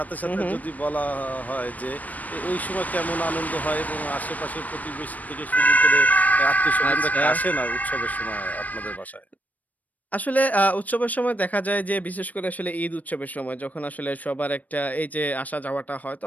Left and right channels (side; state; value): right; late; 0.075 ms